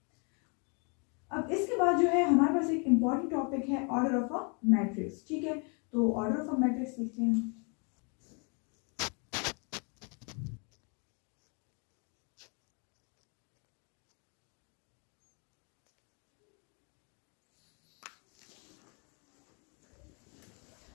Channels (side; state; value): right; quieter; 36.1 dB